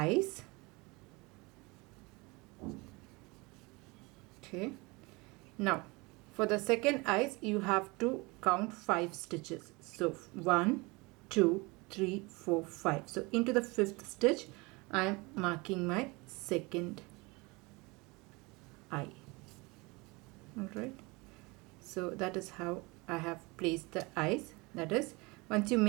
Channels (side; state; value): left; quieter; 25.7 dB